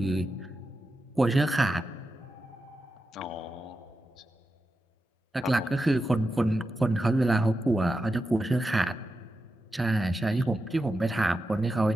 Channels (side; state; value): both; normal; correlation 0.90